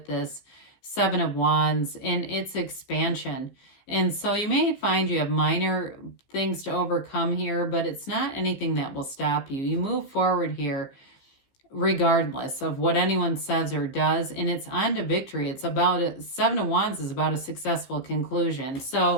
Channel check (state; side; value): late; right; 15 ms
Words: this 7 of Wands, and it's expansion. And so you may find you have minor things to overcome here, but it's not anything that will stop you. You move forward here regardless of what anyone says or does, and it's on to victory. It's about 7 of Wands is about a successful conclusion.